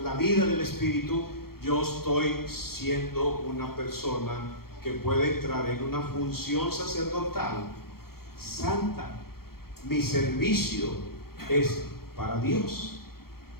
la vida del Espíritu, yo estoy siendo una persona que puede entrar en una función sacerdotal santa. Mi servicio es para Dios.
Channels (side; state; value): right; late; 0.94 ms